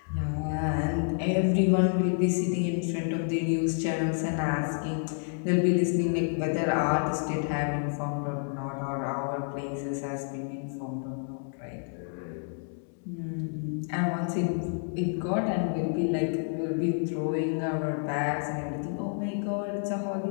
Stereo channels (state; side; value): silent; right; 58 dB below the other